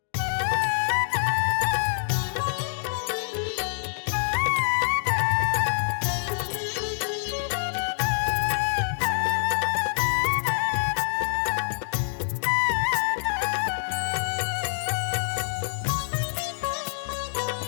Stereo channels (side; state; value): right; silent; digital silence